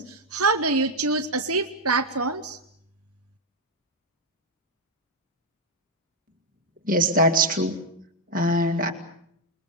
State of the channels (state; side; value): normal; both; correlation 0.01